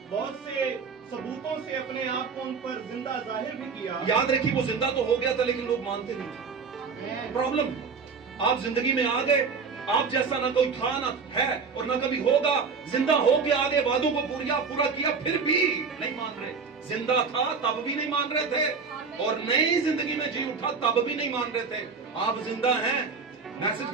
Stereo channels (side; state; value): left; quieter; 5.2 dB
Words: بہت سے ثبوتوں سے اپنے آپ کو ان پر زندہ ظاہر بھی کیا. یاد رکھیے وہ زندہ تو ہو گیا تھا لیکن لوگ مانتے نہیں تھے. پرابلم, آپ زندگی میں آ گئے, آپ جیسا نہ کوئی تھا نہ ہے اور نہ کبھی ہوگا. زندہ ہو کے آگے وعدوں کو پورا کیا, پھر بھی نہیں مان رہے. زندہ تھا تب بھی نہیں مان رہے تھے, اور نئی زندگی میں جی اٹھا تب بھی نہیں مان رہے تھے. آپ زندہ ہیں, میسج